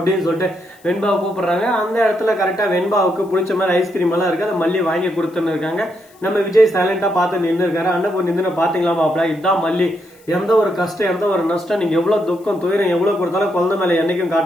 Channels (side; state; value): left; noise; hiss, 29 dB below the sound